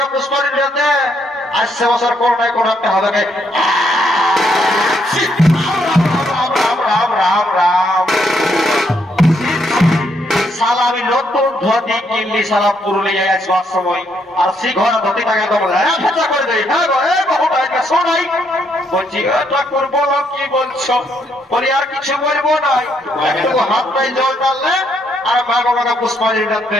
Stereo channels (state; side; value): normal; both; correlation 0.74